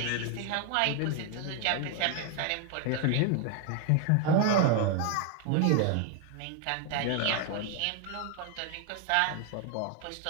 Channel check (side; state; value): both; different; correlation 0.00